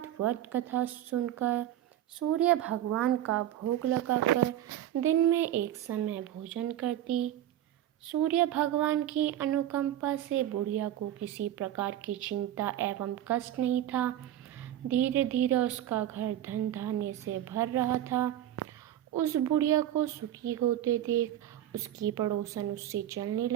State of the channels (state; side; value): quieter; left; 12.1 dB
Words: व्रत कथा सुनकर सूर्य भगवान का भोग लगाकर दिन में एक समय भोजन करती। सूर्य भगवान की अनुकंपा से बुढ़िया को किसी प्रकार की चिंता एवं कष्ट नहीं था। धीरे धीरे उसका घर धन धान्य से भर रहा था। उस बुढ़िया को सुखी होते देख उसकी पड़ोसन उससे चलने